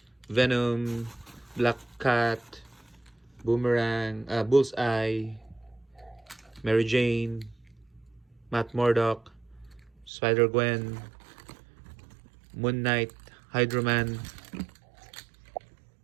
Venom, Black Cat, Boomerang, Bullseye, Mary Jane, Matt Murdock, Spider-Gwen, Moon Knight, Hydro-Man,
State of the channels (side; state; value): left; drops out; at 10.1 s